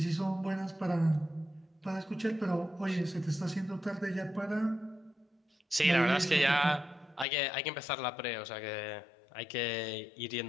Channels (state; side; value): drops out; right; at 7.2 s